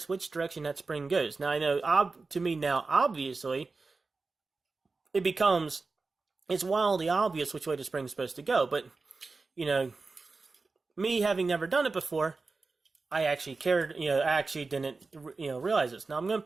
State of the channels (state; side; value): quieter; left; 4.0 dB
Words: which direction that spring goes. Now, I know, to me now, obviously, it's wildly obvious which way the spring's supposed to go. But, me having never done it before, I actually didn't, realize this. Now, I'm going to